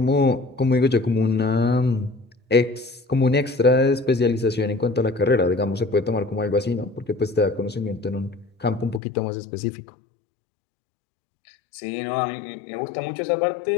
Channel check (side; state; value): right; drops out; at 9.0 s